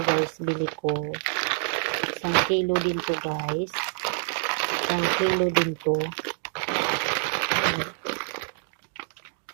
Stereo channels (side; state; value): left; silent; digital silence